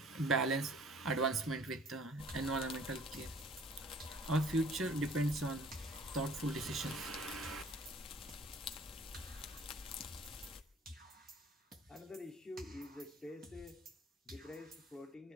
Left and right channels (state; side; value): normal; both; correlation 0.53